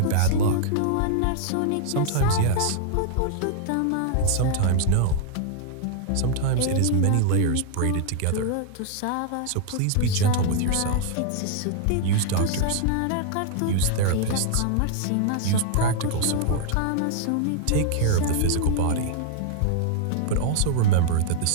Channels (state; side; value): different; both; correlation 0.00